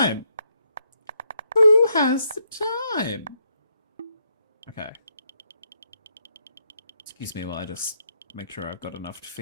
Who has the time? Okay. Excuse me while I just make sure I've got enough to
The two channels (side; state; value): both; inverted; correlation -0.77